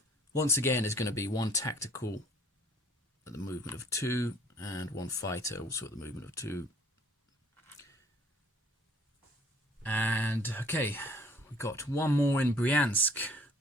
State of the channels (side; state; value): both; normal; correlation 0.56